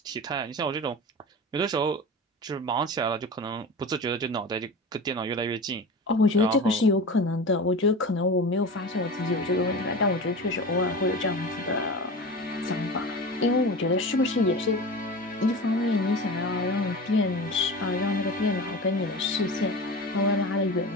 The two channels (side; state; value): both; normal; correlation 0.31